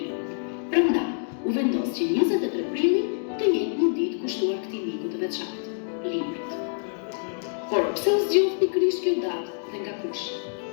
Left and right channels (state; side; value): silent; right; 61 dB below the other